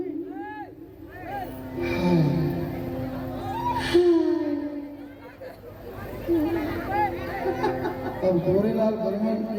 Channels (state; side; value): identical; both; correlation 1.00